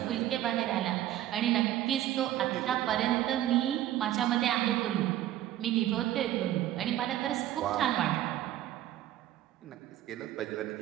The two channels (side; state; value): left; quieter; 13.2 dB